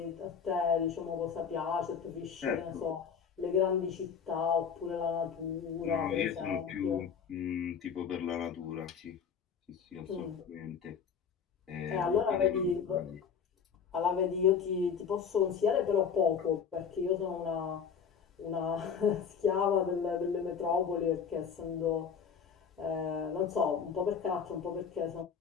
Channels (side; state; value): right; quieter; 6.8 dB